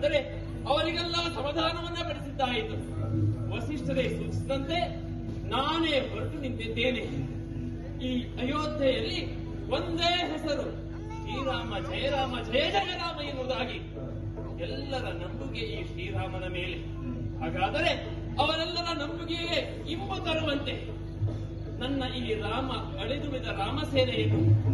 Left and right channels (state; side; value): identical; both; correlation 1.00